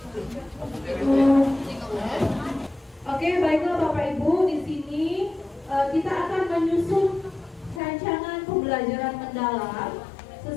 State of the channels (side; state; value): right; drops out; at 7.8 s